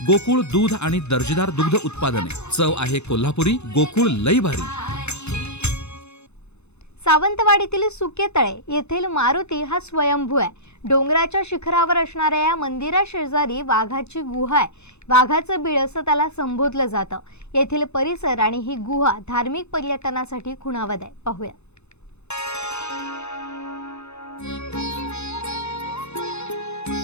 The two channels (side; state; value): right; late; 0.81 ms